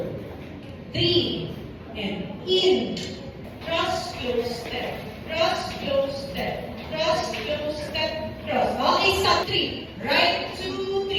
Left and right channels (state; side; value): identical; both; correlation 1.00